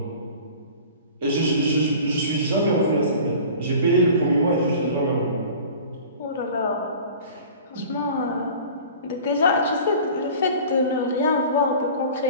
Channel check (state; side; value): inverted; both; correlation -0.42